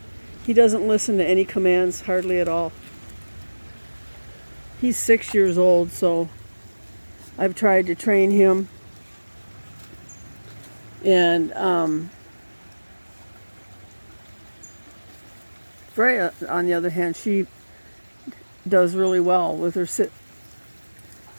listen to any commands hardly at all. He's 6 years old, so I've tried to train him, and Freya, on the other hand, she does really well with her sit.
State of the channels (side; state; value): both; inverted; correlation -1.00